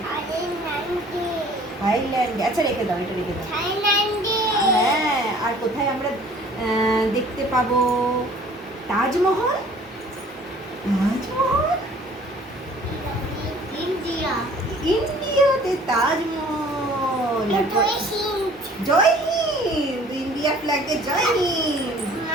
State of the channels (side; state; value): both; normal; correlation 0.52